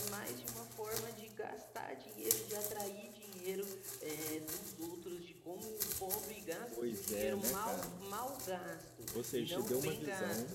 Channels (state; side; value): identical; both; correlation 1.00